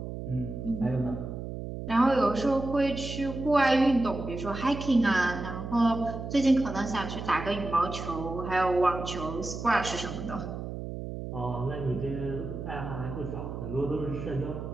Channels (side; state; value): right; noise; hum, 7 dB below the sound